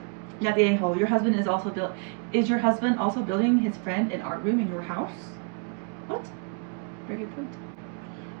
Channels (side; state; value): left; quieter; 37.3 dB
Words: Not the a-hole. Is your husband also building his friend an art room in your house? What? Very good point.